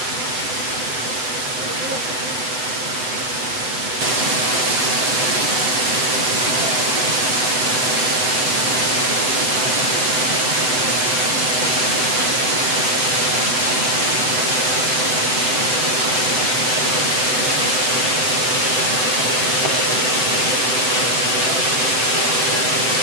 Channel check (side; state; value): left; late; 7.9 ms